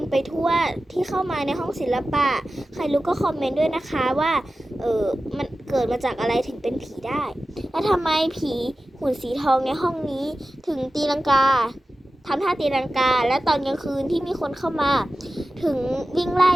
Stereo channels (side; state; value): both; normal; correlation 0.95